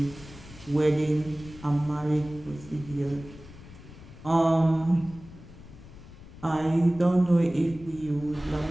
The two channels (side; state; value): left; noise; rumble, 18 dB below the sound